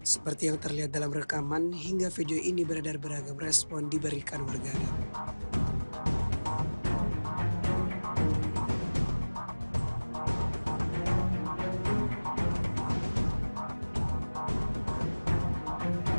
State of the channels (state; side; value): inverted; both; correlation -1.00